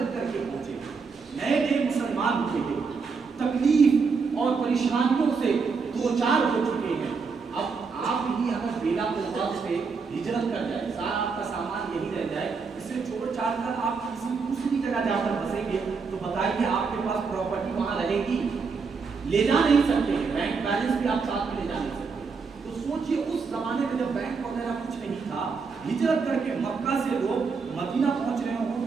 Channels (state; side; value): quieter; left; 5.0 dB